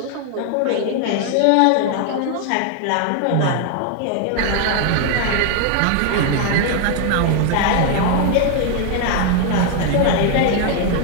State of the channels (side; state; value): both; different; correlation 0.00